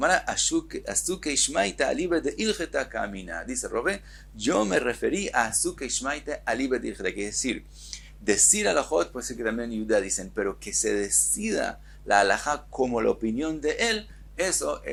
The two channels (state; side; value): identical; both; correlation 1.00